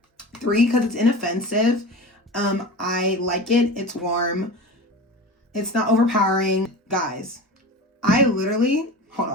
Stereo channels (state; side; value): normal; both; correlation 0.32